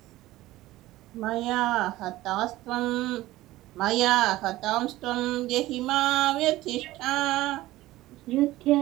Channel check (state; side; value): quieter; left; 16.9 dB